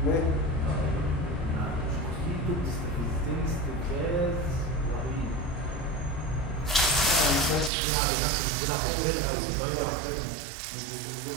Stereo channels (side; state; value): left; drops out; at 7.7 s